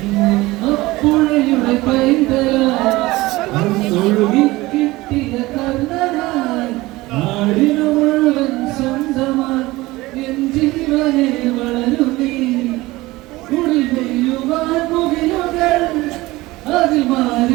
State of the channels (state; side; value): quieter; left; 19.7 dB